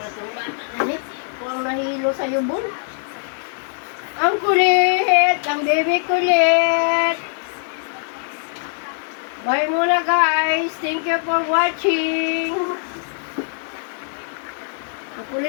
Huwag nahilo sa yubon. Ang kulit! Ang baby kulit! Bye muna guys! Thank you for watching! Ang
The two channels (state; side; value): silent; right; digital silence